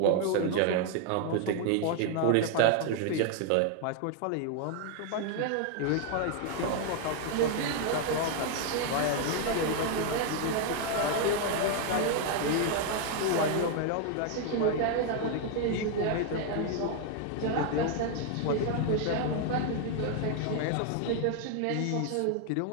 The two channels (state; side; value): different; both; correlation 0.00